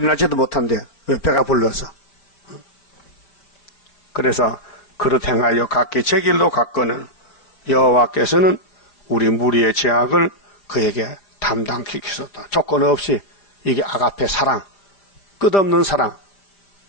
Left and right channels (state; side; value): late; right; 4.9 ms